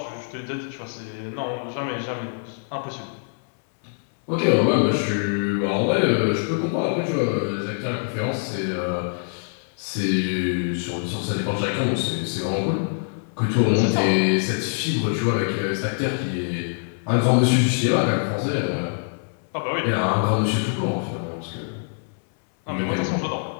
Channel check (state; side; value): silent; right; 62 dB below the other